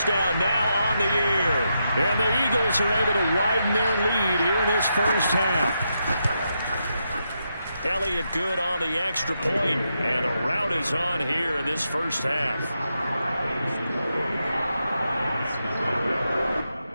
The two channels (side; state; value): both; inverted; correlation -0.84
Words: now on the year. And the Eagles are able to widen their lead here in this first half. Elliott good on the extra point, and the rout is on here in this first half.